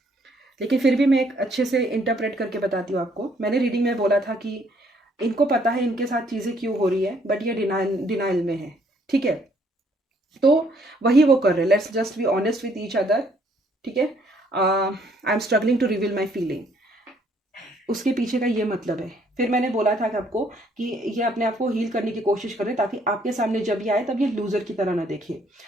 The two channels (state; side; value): normal; both; correlation 0.66